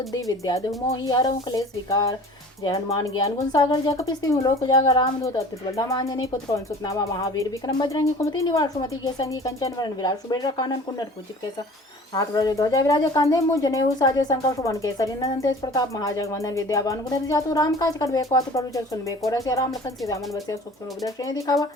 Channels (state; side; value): normal; both; correlation 0.44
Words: विद्या देहु मोहि हरहु क्लेश विकार। जय हनुमान ज्ञान गुण सागर जय कपीस तिहुँ लोक उजागर रामदूत अतुलित बल धाम अंजनी पुत्र पवन सुत नामा महावीर विक्रम बजरंगी कुमति निवार सुमति के संगी कंचन वरण विराट सुबेर कानन कुंडल कुचित केसा हाथ वज्र ध्वजा विराज कांधे मुझ जनेऊ साजे शंकर सुवन केसरी नंदन तेज प्रताप महाजगवंदन विद्यावान गुणति जातु राम काज करबे को अतुल प्रभु सुनबे को रसिया राम लखन सीता मन बसिया सुख रूप दर्शन दिखावा